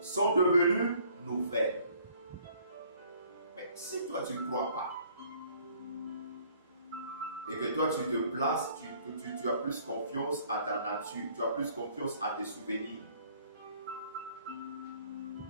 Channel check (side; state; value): both; inverted; correlation -0.59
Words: sont devenues nouvelles. Mais si toi, tu ne crois pas, et que toi, tu te places, tu as plus confiance à ta nature, tu as plus confiance à tes souvenirs.